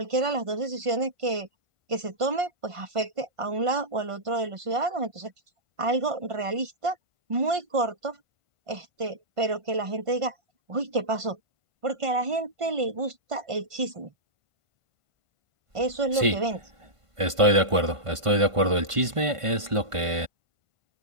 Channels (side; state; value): left; late; 1.5 ms